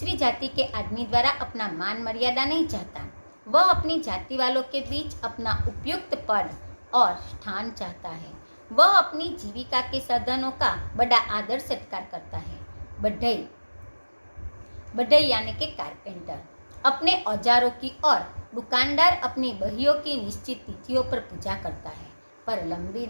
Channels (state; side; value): inverted; both; correlation -1.00